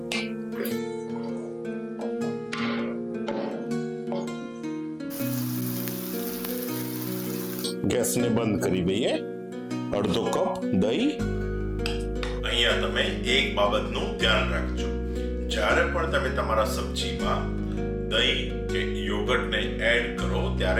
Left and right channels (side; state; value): both; identical; correlation 1.00